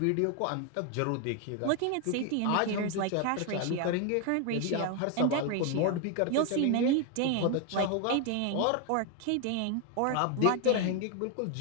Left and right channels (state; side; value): different; both; correlation 0.01